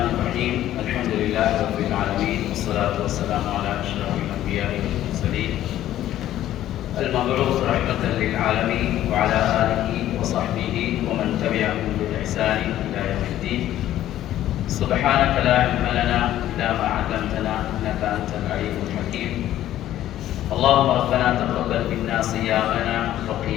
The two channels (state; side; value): quieter; right; 12.9 dB